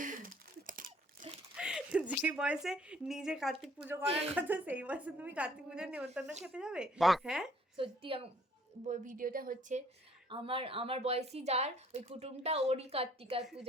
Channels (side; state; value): both; normal; correlation 0.60